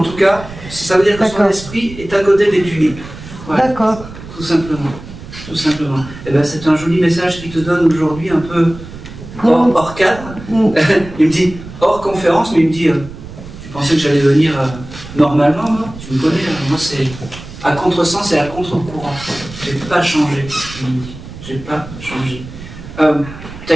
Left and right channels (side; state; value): right; noise; rumble, 14 dB below the sound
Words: tout cas, ça veut dire que son esprit est à côté des tulipes. Voilà. D'accord. Tout simplement. Tout simplement. Et ben, c'est un joli message qu'il te donne aujourd'hui, un peu hors cadre. Il me dit, hors conférence, mais il me dit, tu pensais que j'allais venir normalement, moi? Tu me connais, moi c'est à contresens et à contre-courant. J'ai pas changé, il me dit. J'ai pas changé. T'as